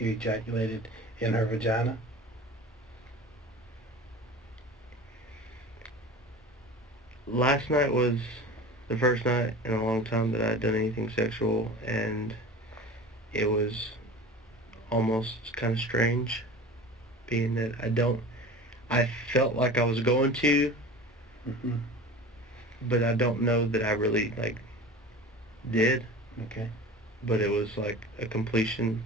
ejaculated in her vagina? Last night was the first night in a long time that I had done anything sexual, and it was almost kind of strange, being that I felt like I was going to, but I don't know that I really, did. Okay. But it was like a completion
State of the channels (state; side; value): normal; both; correlation 0.36